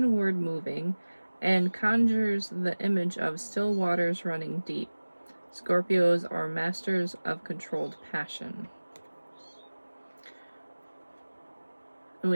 moving and conjures the image of still waters running deep. Scorpios are masters of controlled passion.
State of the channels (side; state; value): both; inverted; correlation -1.00